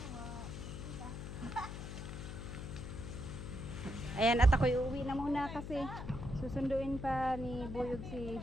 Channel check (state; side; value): noise; left; hum, 8 dB below the sound